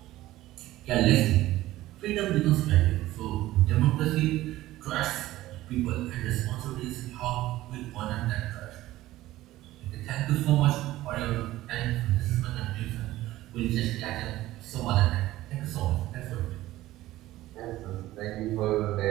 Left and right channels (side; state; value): left; quieter; 16.0 dB